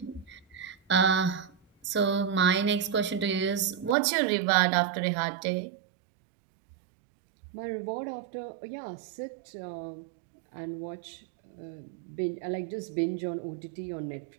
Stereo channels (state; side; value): drops out; left; at 4.0 s